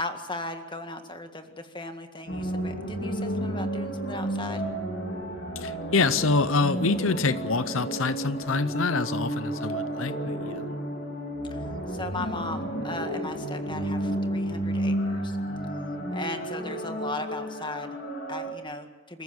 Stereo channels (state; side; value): normal; both; correlation 0.37